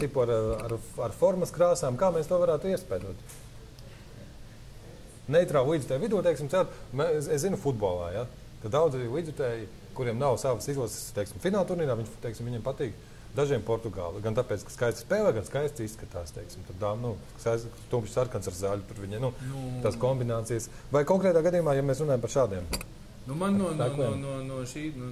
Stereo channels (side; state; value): both; identical; correlation 1.00